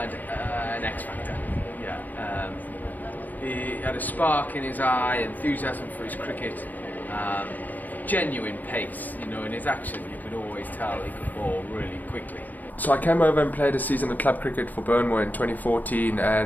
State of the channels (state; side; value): late; right; 0.086 ms